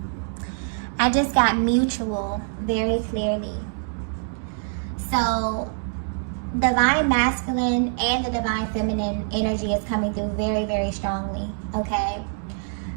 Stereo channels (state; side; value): silent; left; digital silence